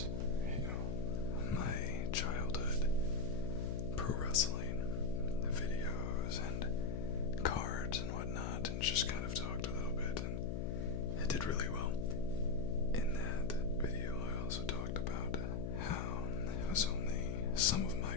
my childhood pro wrestling videos and cards and whatnot, and just kind of talked a little bit, and it did really well. In that video, I also talked about how it was only some of my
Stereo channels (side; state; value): left; noise; hum, 1 dB below the sound